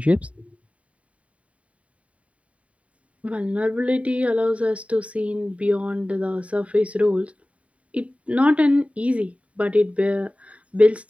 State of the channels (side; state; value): left; late; 0.066 ms